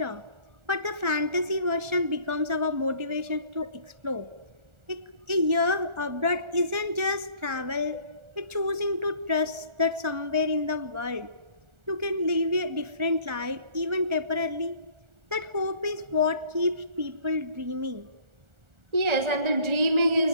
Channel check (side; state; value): left; late; 1.4 ms